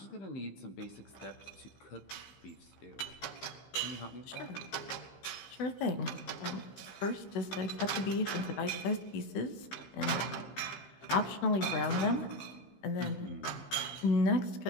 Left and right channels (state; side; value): late; right; 15 ms